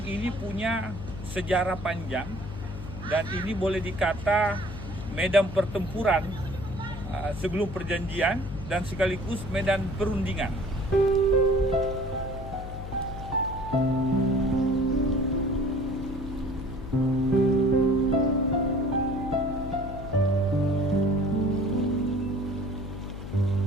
ini punya sejarah panjang dan ini boleh dikata medan pertempuran sebelum perjanjian dan sekaligus medan perundingan.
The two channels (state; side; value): noise; left; hum, 9 dB below the sound